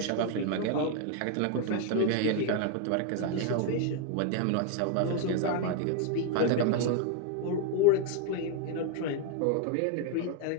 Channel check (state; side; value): different; both; correlation 0.00